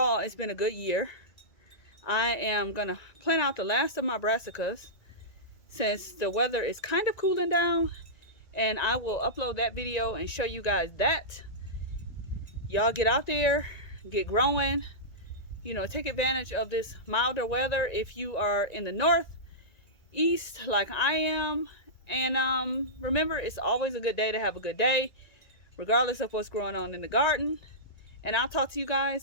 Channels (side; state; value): right; late; 1.9 ms